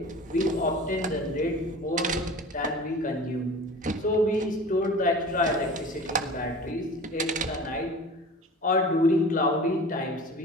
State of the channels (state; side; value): normal; both; correlation 0.38